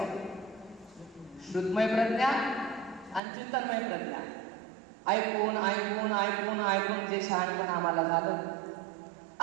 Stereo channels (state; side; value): drops out; left; at 3.2 s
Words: श्रुतमय प्रज्ञा आणि चिंतनमय प्रज्ञा. ऐकून ऐकून ऐकून ऐकून जे शहाणपण आम्हाला झालं